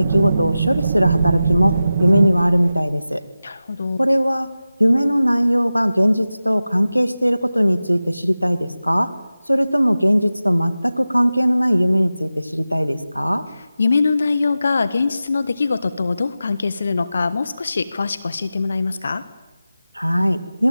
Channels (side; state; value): both; inverted; correlation -0.94